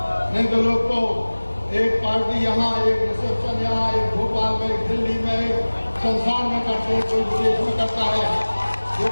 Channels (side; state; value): both; inverted; correlation -1.00